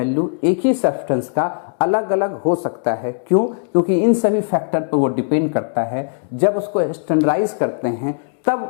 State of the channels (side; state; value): right; silent; 67 dB below the other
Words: एक ही सब्सटेंस का अलग अलग हो सकता है। क्यों? क्योंकि इन सभी फैक्टर पर वो डिपेंड करता है। जब उसको स्टैंडर्डाइज करते हैं